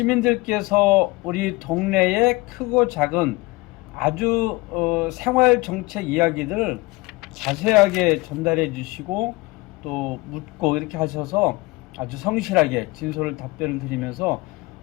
우리 동네의 크고 작은 아주 생활 정책 이야기들을 자세하게 전달해 주시고 또 묻고 이렇게 하셔서 아주 성실하게 진솔을 답변을 드리면서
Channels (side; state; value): right; quieter; 22.6 dB